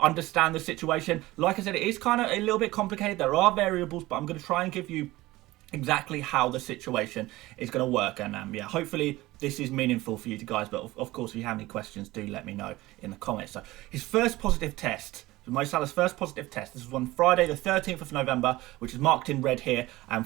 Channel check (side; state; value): left; quieter; 18.5 dB